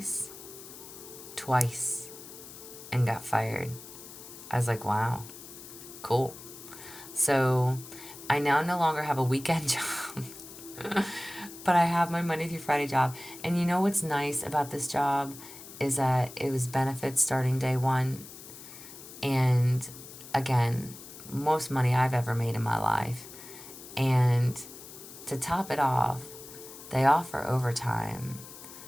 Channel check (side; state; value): left; noise; hiss, 15 dB below the sound